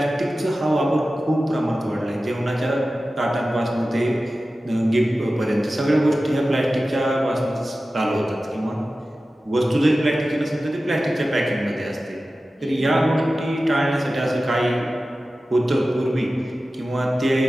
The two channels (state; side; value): normal; both; correlation 0.95